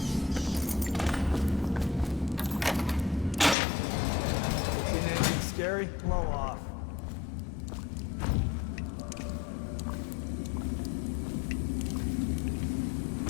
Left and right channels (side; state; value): right; drops out; at 3.6 s